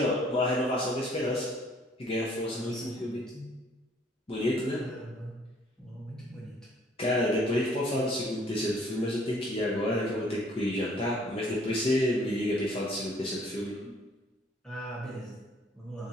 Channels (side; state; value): both; normal; correlation 0.60